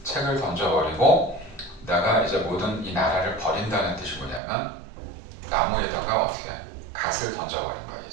책을 던져버리고 내가 이제 모든 이 나라를 버린다는 뜻이 뭐냐면 나무에다가 어떻게 갓을 던져버린 거야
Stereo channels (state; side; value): drops out; left; at 4.4 s